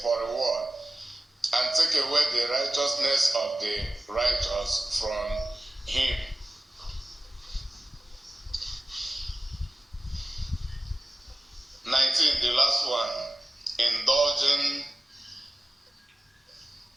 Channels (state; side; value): normal; both; correlation 0.96